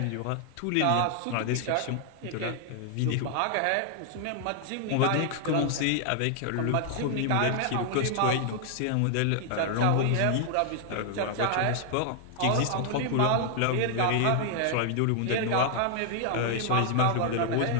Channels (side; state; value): both; different; correlation 0.00